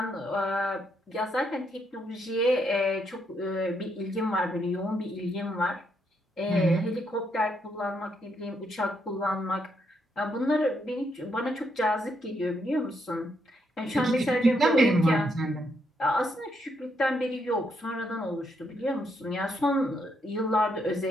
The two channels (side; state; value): both; normal; correlation 0.77